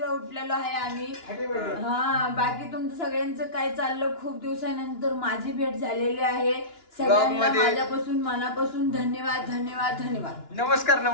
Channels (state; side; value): late; right; 2.9 ms